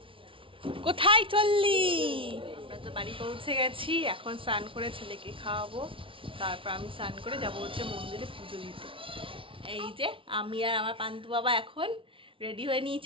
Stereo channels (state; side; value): late; left; 0.25 ms